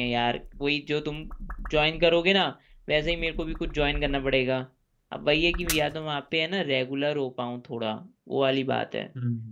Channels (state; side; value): identical; both; correlation 1.00